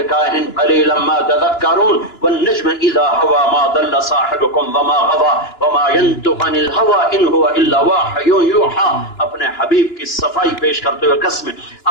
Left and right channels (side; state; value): right; late; 2.9 ms